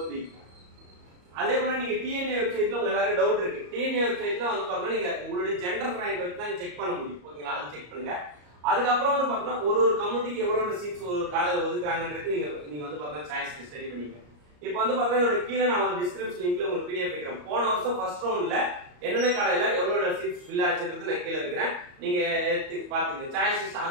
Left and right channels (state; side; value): late; left; 34 ms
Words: அதே போல நீங்க டிஎன்ஏ வெப்சைட்ல உங்க எல்லாரும் டவுட் இருக்கு. டிஎன்ஏ வெப்சைட்ல வந்து பாத்தீங்கன்னா நீங்க உங்களுடைய ஜெண்டர் ரேங்க் வச்சு தான் செக் பண்ண முடியும் ஓகேங்களா. அது செக் பண்ணுங்க. அதுக்கப்புறம் வந்து பாத்தீங்கன்னா ஒரு கம்யூனிட்டிக்கு எவ்வளவு சீட்ஸ் ஒரு காலேஜ்ல ஒதுக்குறாங்கன்றது நீங்க வந்து பாத்தீங்கன்னா சாய்ஸ் ஸ்டடி பண்ணிக்கங்க. இப்போ வந்து பாத்தீங்கன்னா கீழே நான் ஒரு டிஸ்கிரிப்ஷன் லிங்க்ல உங்களுக்கு PDF வைக்கிறேன். போன வருஷம் ஃபர்ஸ்ட் ரவுண்ட்ல என்னென்ன காலேஜ்ல எவ்வளவு சீட்ஸ் ஃபில் ஆச்சுன்றது நான் கீழே வைக்கிறேன், நீங்க எடுத்து பாத்துங்க. சாய்ஸ் லிஸ்ட்